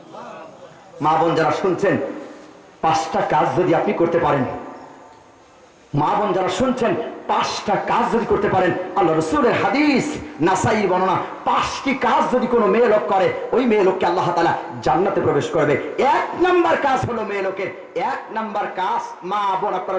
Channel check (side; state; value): both; identical; correlation 1.00